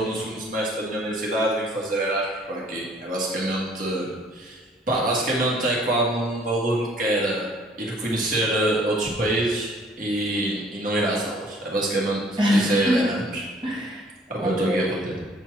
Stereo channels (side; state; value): both; normal; correlation 0.57